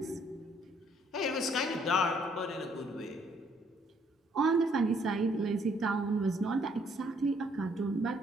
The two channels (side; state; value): both; normal; correlation 0.66